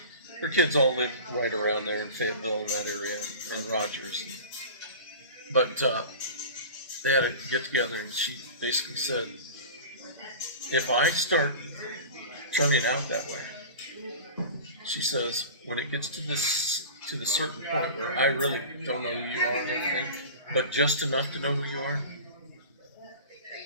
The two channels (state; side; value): inverted; both; correlation -0.35